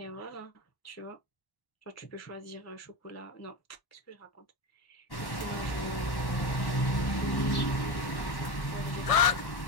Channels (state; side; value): late; right; 1.1 ms